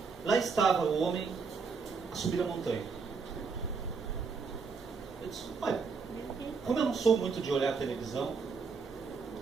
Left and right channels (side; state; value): left; quieter; 5.0 dB